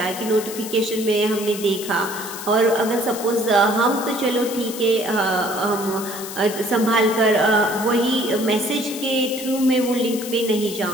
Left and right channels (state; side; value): noise; left; hiss, 10 dB below the sound